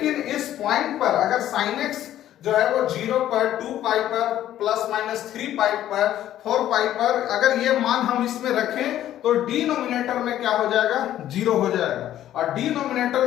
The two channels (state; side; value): quieter; right; 12.3 dB